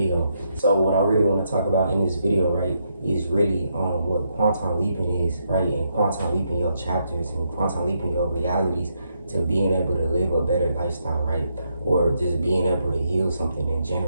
So what I really want to talk about in this video, right, is really what quantum leaping is, right? And quantum leaping your chapters and quantum leaping your realities to being able to live a better lifestyle, right? Or just being able to heal something in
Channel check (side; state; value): both; inverted; correlation -0.78